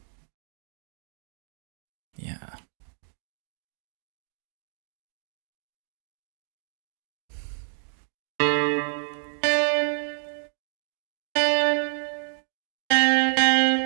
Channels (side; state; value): left; silent; digital silence